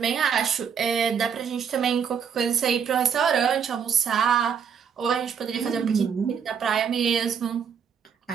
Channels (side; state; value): left; quieter; 7.1 dB